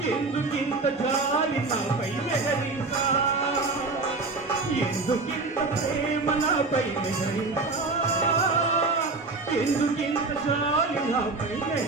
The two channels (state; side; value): quieter; left; 3.8 dB